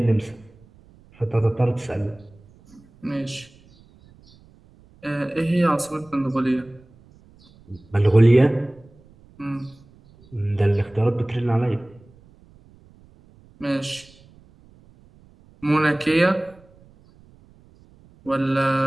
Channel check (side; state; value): right; noise; rumble, 27 dB below the sound